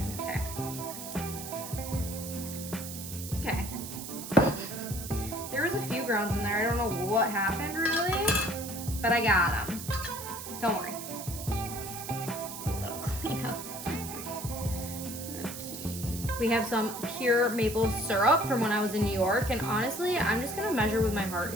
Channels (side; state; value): right; noise; hiss, 9 dB below the sound